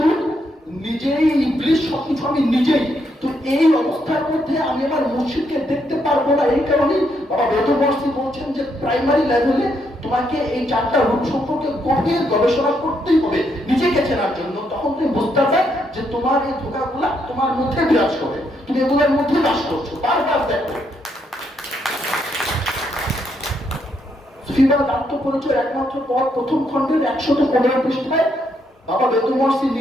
নিজেই ইবলিশ, সবকিছু আমি নিজেই। তো এই অবস্থার মধ্যে আমি আমার মুর্শিদকে দেখতে পারবো না। এই কারণেই বাবা মেহেদুর ওয়ার্সি বলছেন যে প্রাইমারি লেভেলে তোমাকে এই 4টা রূপ সম্পর্কে গভীর গবেষণা করতেই হবে নিজেকে চেনার জন্য। তখন তুমি বুঝতে পারবে যে তোমার এই ধোঁকাগুলা তোমার মধ্যে বিরাজ করে, তুমি এগুলোর মধ্যে বাস করছো। বারবার দেখো সুফিবাদ আত্মপরিচয় একমাত্র পথ প্রথম খণ্ডের 115 পৃষ্ঠায় বাবা বেদুমর্সি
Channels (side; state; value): both; normal; correlation 0.76